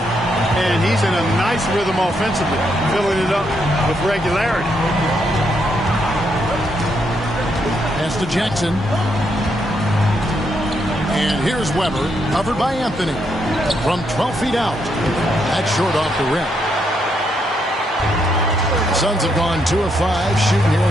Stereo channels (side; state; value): both; normal; correlation 0.77